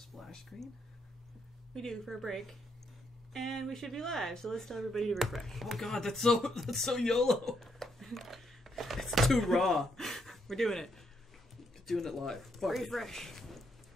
screen? We do for a break. And we should be live, so let's tell everybody to refresh. Oh god, that's so YOLO. It's too raw. We're doing it. Doing it live. Fuck Refresh.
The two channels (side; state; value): both; normal; correlation 0.76